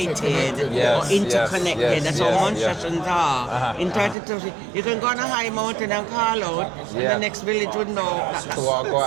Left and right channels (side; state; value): left; drops out; at 4.2 s